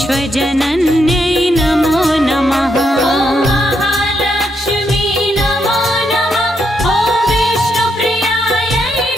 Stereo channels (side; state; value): both; normal; correlation 0.79